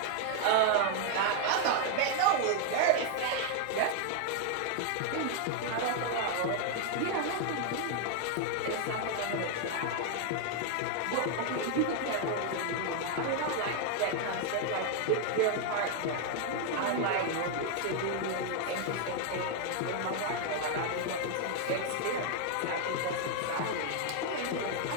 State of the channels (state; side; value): different; both; correlation 0.00